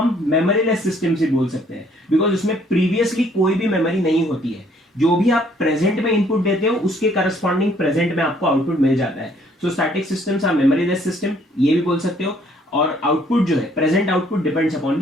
मेमोरीलेस सिस्टम्स भी बोल सकते हैं, बिकॉज उसमें प्रीवियसली कोई भी मेमोरी नहीं होती है। जो भी आप प्रेजेंट में इनपुट देते हो उसके करस्पॉन्डिंग प्रेजेंट में आपको आउटपुट मिल जाता है। So static systems are memoryless system, ये भी बोल सकते हो। और आउटपुट जो है, present output depends upon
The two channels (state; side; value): normal; both; correlation 0.63